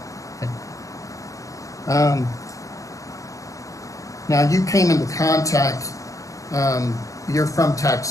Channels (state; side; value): late; right; 0.16 ms